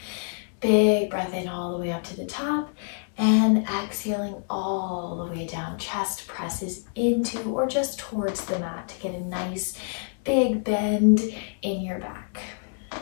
Big big breath in all the way up to the top, and exhaling all the way down. Chest presses into or just towards the mat to get a nice big bend in your back.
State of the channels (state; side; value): silent; right; 61 dB below the other